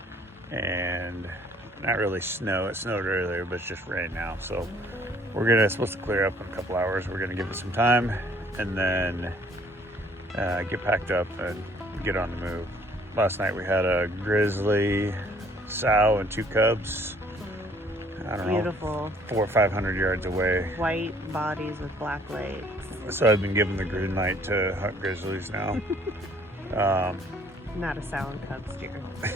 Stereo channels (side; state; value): both; normal; correlation 0.59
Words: and not really snow. It snowed earlier, but it's just rain now. So we're supposed to clear up in a couple hours. We're gonna give it some time and then get packed up and get on the move. Last night we had a grizzly sow and 2 cubs. I don't Beautiful. know, 400 or 500 yards away. White bodies with black legs. So I've been given the green light to hunt grizzlies now. Not a sow and cub steer.